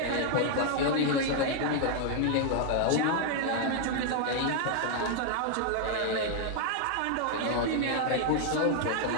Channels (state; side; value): different; both; correlation 0.00